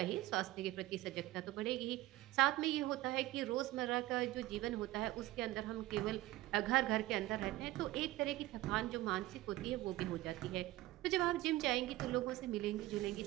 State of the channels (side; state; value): left; quieter; 17.2 dB